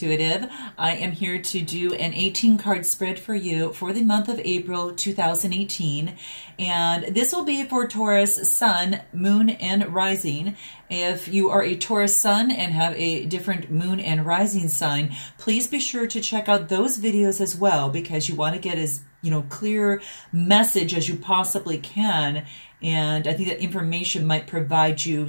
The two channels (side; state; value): both; inverted; correlation -1.00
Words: I am here to do an 18 card spread for you for the month of April 2018. And this will be for Taurus Sun, Moon, and Rising. If you are a Taurus Sun and have a different Moon and Rising sign, please be sure to check out those videos as well, because you want to get as clear message as you possibly can. And I think that information might provide you